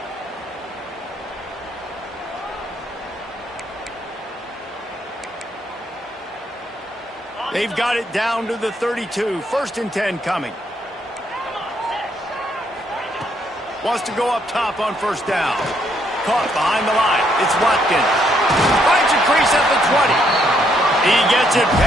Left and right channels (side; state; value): both; normal; correlation 0.72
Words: They've got it down to the 32. 1st and 10 coming. Wants to go up top on 1st down. Caught behind the line. It's Watkins. Finds a crease at the 20. He gets it